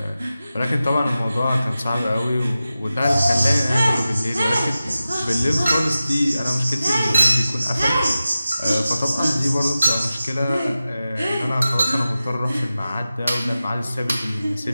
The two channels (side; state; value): both; inverted; correlation -0.94